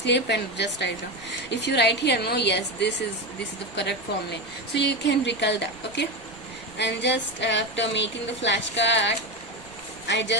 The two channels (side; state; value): right; noise; rumble, 24 dB below the sound